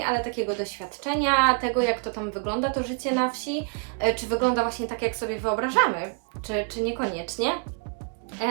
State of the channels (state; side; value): quieter; left; 39.5 dB